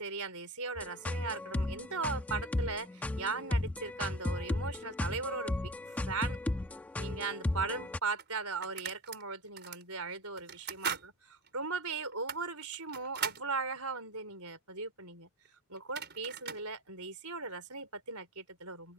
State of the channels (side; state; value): both; normal; correlation 0.33